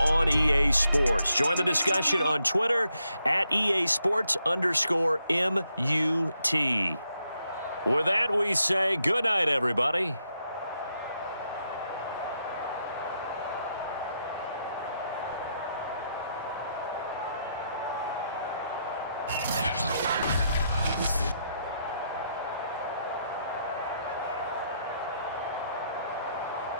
EA Sports. Join the discussion on Twitter at EA Sports_MUT. With that, we say good night, everybody.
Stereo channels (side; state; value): both; inverted; correlation -0.79